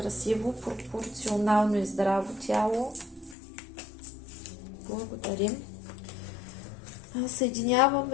пропорционално и здраво тяло. Благодарим.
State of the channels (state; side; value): drops out; right; at 3.4 s